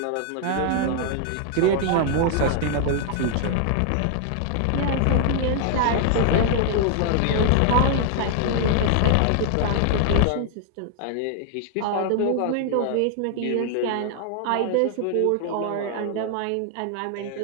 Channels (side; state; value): both; different; correlation 0.00